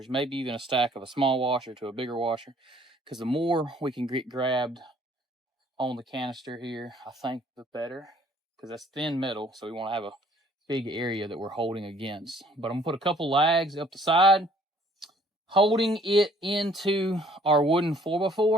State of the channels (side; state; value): both; normal; correlation 0.59